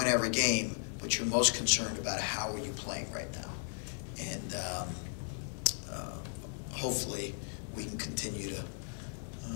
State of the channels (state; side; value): silent; right; 54 dB below the other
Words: every game, but you're most concerned about how are you playing right now. And hopefully we can continue